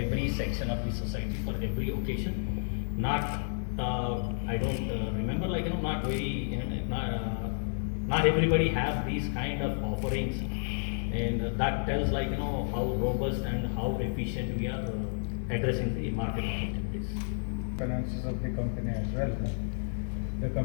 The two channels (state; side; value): silent; right; digital silence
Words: section of the society for every occasion. Not, I don't remember, like, not very, not everybody have these kind of offerings, and that tells like, how robust and how efficient we are addressing the market opportunities. Finances of the company as well. The